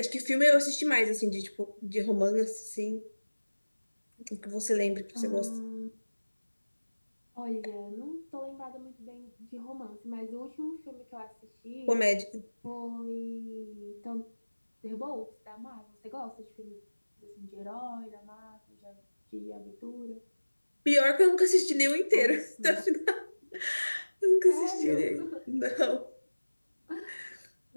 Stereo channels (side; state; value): both; inverted; correlation -1.00